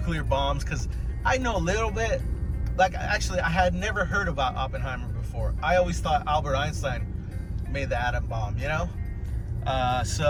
bombs, because I know a little bit. Actually, I had never heard about Oppenheimer before. I always thought Albert Einstein made the atom bomb,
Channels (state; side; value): identical; both; correlation 1.00